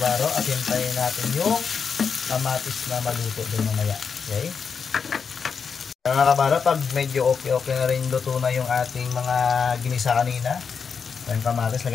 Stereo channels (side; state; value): right; quieter; 6.0 dB